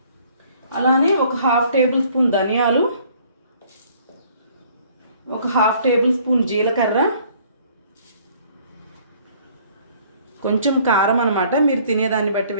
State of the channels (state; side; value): inverted; both; correlation -0.58